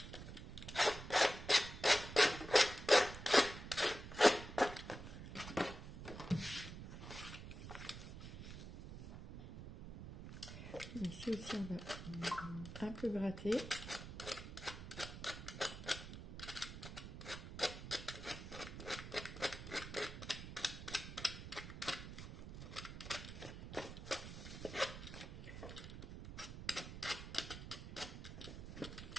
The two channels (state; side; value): noise; right; rumble, 10 dB below the sound